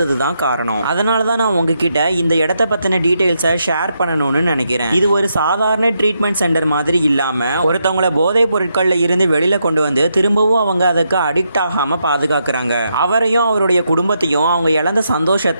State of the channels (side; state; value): both; inverted; correlation -0.81